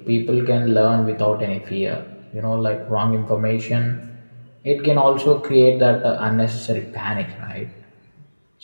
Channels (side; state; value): both; inverted; correlation -1.00